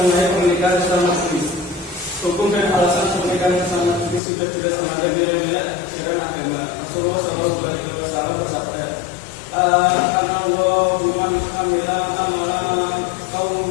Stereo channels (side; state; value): right; drops out; at 4.2 s